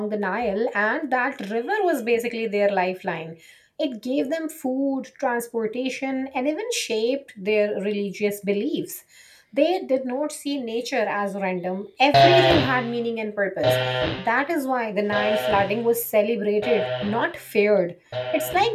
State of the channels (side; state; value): both; identical; correlation 1.00